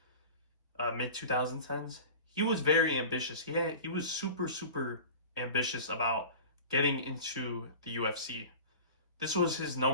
mid 2010s, he was very ambitious. He was super, super ambitious about getting into the UFC. This was his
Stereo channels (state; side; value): inverted; both; correlation -0.37